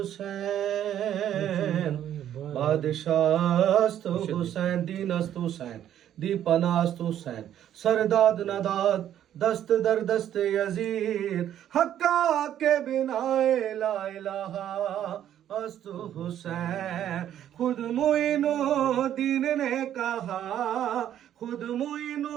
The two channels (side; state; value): left; quieter; 10.8 dB